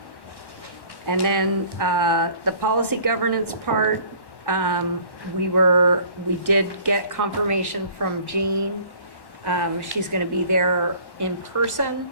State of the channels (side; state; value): right; late; 1.1 ms